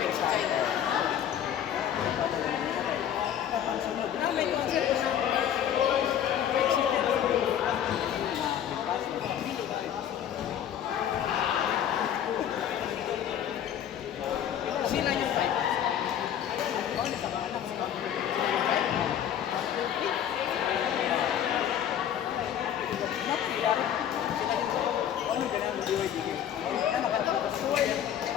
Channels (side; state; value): right; quieter; 9.8 dB